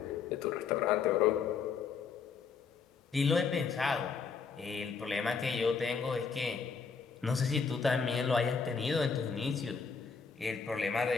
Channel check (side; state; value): right; quieter; 5.5 dB